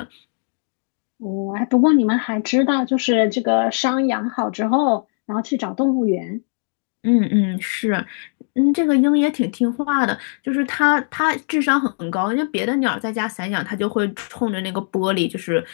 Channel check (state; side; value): silent; right; 61 dB below the other